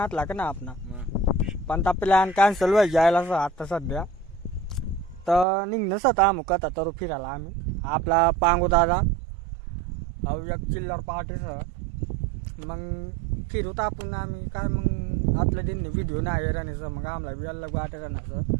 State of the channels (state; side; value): drops out; left; at 5.5 s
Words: का ना आपला पण त्या प्लॅन कॅन्सल व्हायला जायला असं आता सध्या तर निघणंच आता आम्ही कथा तर फिरायला आम्ही आपला पांगू दादा एक चिल्लर पार्टीसह मग फिरूत आपण आम्ही काय मग आतल्या दिन व्हिडिओ नाही राहण्याचं मग आम्हाला बी अलग वाटे राहण्याचं